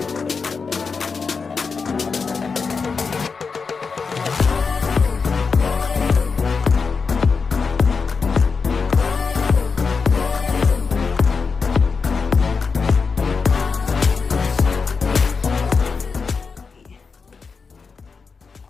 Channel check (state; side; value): quieter; right; 5.0 dB